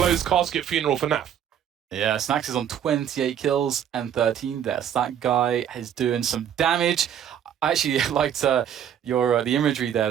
casket funeral for Naf. Yeah, Snacks is on 28 kills and 13 deaths. That guy is doing some damage. I actually liked the imagery there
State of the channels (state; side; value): quieter; left; 9.4 dB